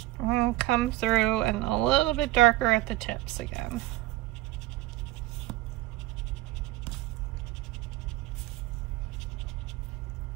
And come through and a little bit darker at the tips again.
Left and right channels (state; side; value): quieter; left; 17.1 dB